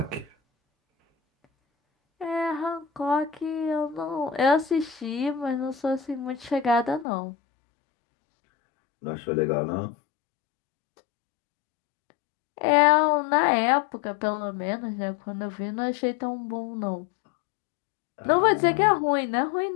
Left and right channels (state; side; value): drops out; right; at 7.1 s